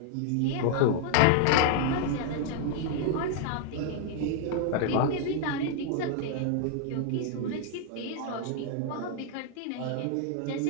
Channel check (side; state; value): both; different; correlation 0.00